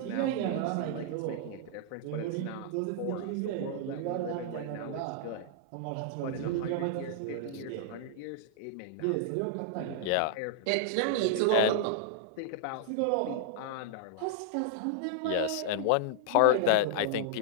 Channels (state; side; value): different; both; correlation -0.01